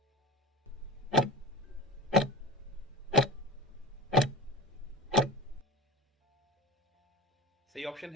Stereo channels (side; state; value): both; normal; correlation 0.29